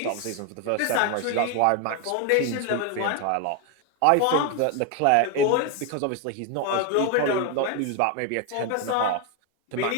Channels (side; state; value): both; different; correlation 0.01